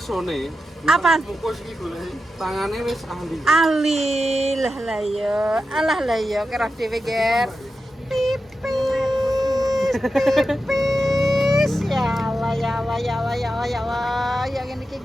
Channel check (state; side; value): normal; both; correlation 0.90